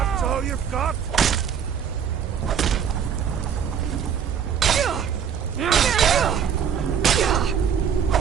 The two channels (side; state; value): left; quieter; 7.9 dB